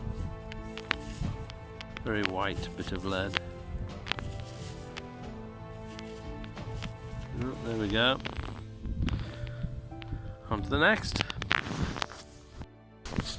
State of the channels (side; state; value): both; identical; correlation 1.00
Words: Very white bit of lead. Oh, there we go. On to the next.